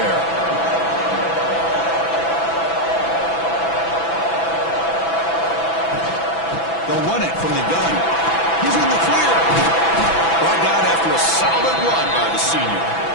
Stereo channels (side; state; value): right; late; 6.0 ms